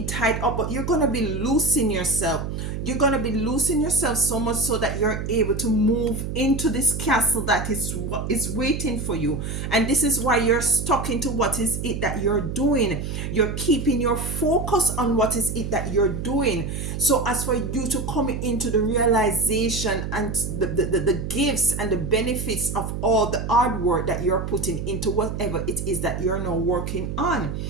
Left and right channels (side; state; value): right; noise; hum, 5 dB below the sound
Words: tied up, but you're going to be loosing yourself. You're going to be losing yourself so much so that you're able to move into this castle that is waiting for you. And this is why you're stuck into what is it that you're doing. You're keeping your focus on what is it that you're doing. So as for you to come into the realization and the gifts and the benefits of all the hard work that you're putting into whatever it is that you're now working on.